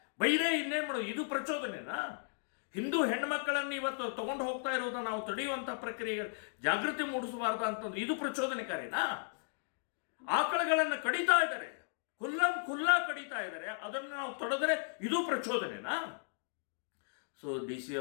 ಬೈರೇ ಇನ್ನೇನು ಮಾಡೋದು? ಇದು ಪ್ರಚೋದನೆನಾ? ಹಿಂದೂ ಹೆಣ್ಣುಮಕ್ಕಳನ್ನು ಇವತ್ತು ತಗೊಂಡು ಹೋಗ್ತಾ ಇರೋದು ನಾವು ತಡೆಯುವಂಥ ಪ್ರಕ್ರಿಯೆ ಜಾಗೃತಿ ಮೂಡಿಸಬಾರ್ದು ಅಂತಂದ್ರೆ ಇದು ಪ್ರಚೋದನೆಕಾರಿನಾ? ಆಕಳಗಳನ್ನು ಕಡಿತಾ ಇದ್ದಾರೆ, ಖುಲ್ಲಾ ಕಡಿತಾ ಇದ್ದಾರೆ, ಅದನ್ನು ನಾವು ತಡೆದ್ರೆ ಇದು ಪ್ರಚೋದನೆನಾ? ಸೊ DC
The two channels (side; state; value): right; silent; digital silence